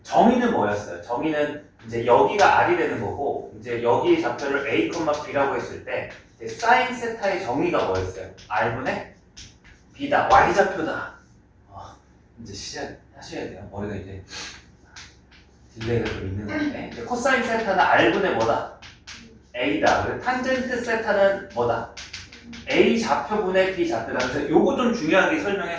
정의는 뭐였어요? 정의는 이제 여기가 R이 되는 거고 이제 여기 좌표를 A, B라고 했을 때 사인 세타의 정의가 뭐였어요? R분의 B다. Y좌표다. 이제 시작하셔야 돼요. 머리가 이제 딜레이가 좀 있는 건데 이제 코사인 세타는 R분의 뭐다? A다. 그리고 탄젠트 세타는 뭐다? A 좌표분의 B 좌표다. 그래서 요거 좀 중요하게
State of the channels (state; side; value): identical; both; correlation 1.00